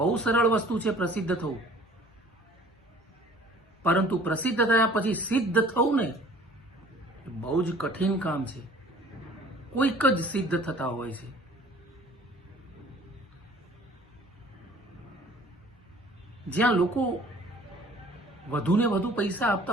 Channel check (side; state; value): both; normal; correlation 0.51